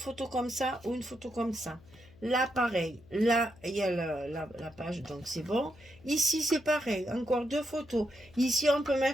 comme ça ou une photo comme ça. Là, pareil. Là, il y a la page, donc c'est bon. Ici, c'est pareil. Encore 2 photos. Ici, on peut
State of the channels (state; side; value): noise; left; hum, 24 dB below the sound